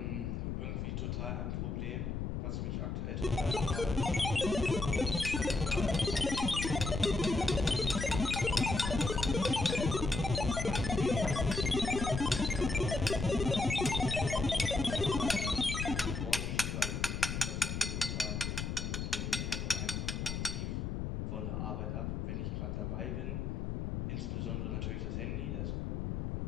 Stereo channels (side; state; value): left; noise; rumble, 2 dB below the sound